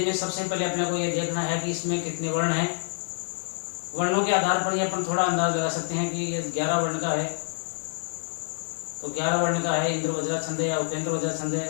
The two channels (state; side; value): silent; right; digital silence